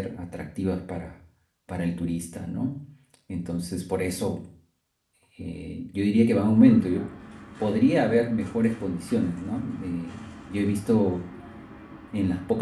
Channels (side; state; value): both; identical; correlation 1.00